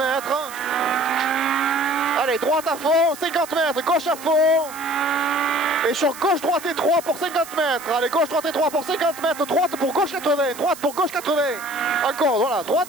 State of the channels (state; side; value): noise; right; hiss, 15 dB below the sound